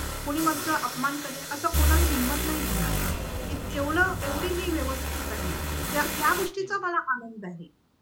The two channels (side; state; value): both; identical; correlation 1.00